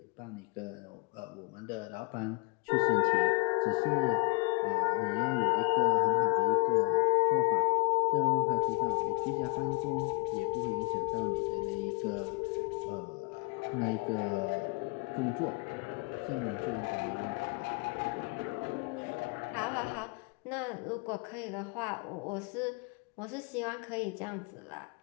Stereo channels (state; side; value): quieter; right; 32.4 dB